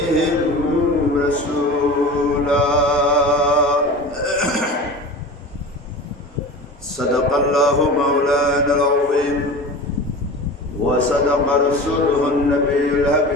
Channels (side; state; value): both; normal; correlation 0.34